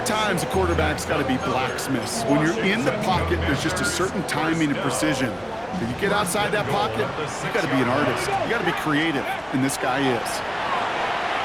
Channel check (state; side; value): identical; both; correlation 1.00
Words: times a quarterback's got to be blacksmiths. When you're in the pocket, there's just a certain timing and precision. When you get outside that pocket, you got to be an artist. You got to be creative, and this guy is.